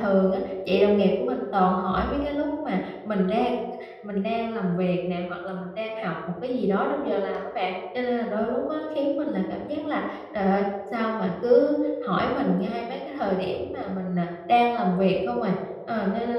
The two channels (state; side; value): identical; both; correlation 1.00